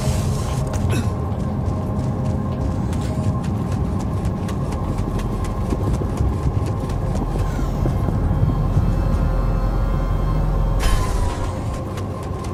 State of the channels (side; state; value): both; identical; correlation 1.00